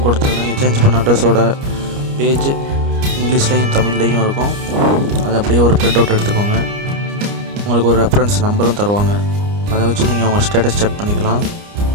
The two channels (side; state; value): left; late; 29 ms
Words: கொடுத்துருங்க. நீங்கள் சேஞ்ச் பண்ண அட்ரஸோட பேஜ் இங்கிலீஷ்லேயும் தமிழ்லேயும் இருக்கும். அதை அப்படியே ஒரு பிரிண்ட் அவுட் எடுத்துக்கோங்க. உங்களுக்கு ஒரு ரெஃபரன்ஸ் நம்பரும் தருவாங்க. அதை வச்சு நீங்கள் உங்கள் ஸ்டேட்டஸ் செக் பண்ணிக்கலாம்.